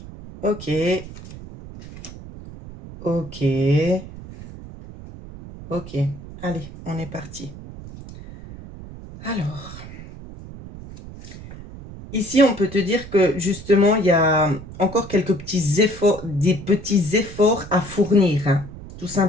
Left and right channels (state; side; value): noise; right; rumble, 14 dB below the sound